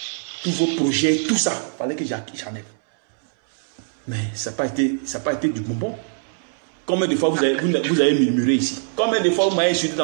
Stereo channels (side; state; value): left; silent; 64 dB below the other